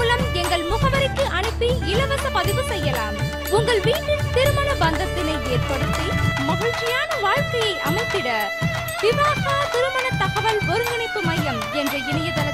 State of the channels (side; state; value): both; identical; correlation 1.00